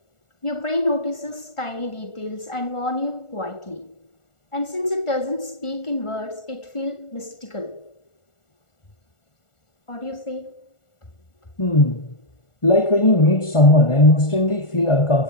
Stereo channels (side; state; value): right; late; 1.4 ms